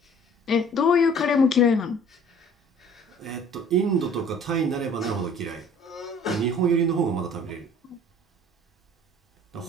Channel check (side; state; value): both; normal; correlation 0.52